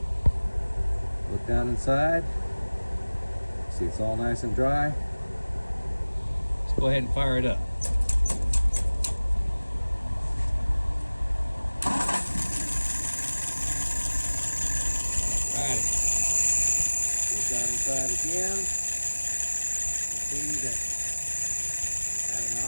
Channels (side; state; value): both; inverted; correlation -1.00